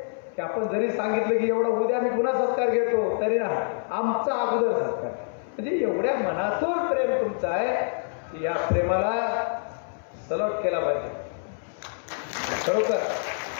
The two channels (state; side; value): silent; right; 61 dB below the other